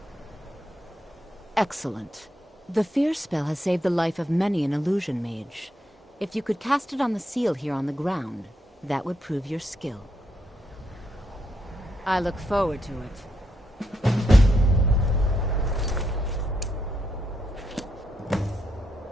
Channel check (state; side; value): normal; both; correlation 0.80